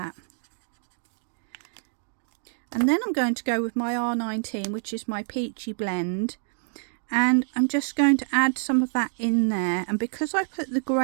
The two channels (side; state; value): left; silent; digital silence